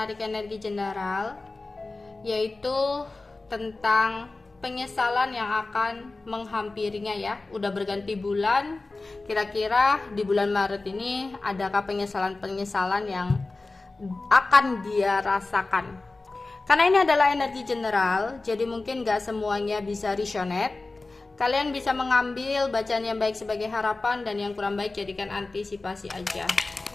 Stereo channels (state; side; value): quieter; right; 3.4 dB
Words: energi general, yaitu tentang penyesalan yang akan menghampirinya ya. Udah berganti bulan, kira-kira di bulan Maret ini adakah penyesalan-penyesalan yang akan dia rasakan? Karena ini adalah energi general, jadi mungkin gak semuanya bisa resonate. Kalian bisa mengambil bacaan yang baik sebagai harapan dan yang kurang baik jadikan antisipasi aja.